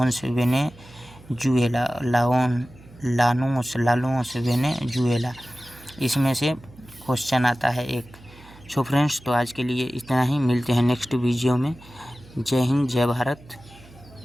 Venezuela, Laos Venezuela. इसमें से क्वेश्चन आता है एक। सो फ्रेंड्स, तो आज के लिए इतना ही, मिलते हैं नेक्स्ट वीडियो में। जय हिंद, जय भारत,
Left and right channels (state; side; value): noise; right; hum, 22 dB below the sound